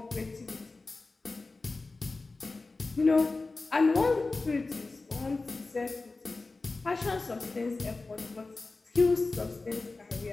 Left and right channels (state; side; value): quieter; right; 3.6 dB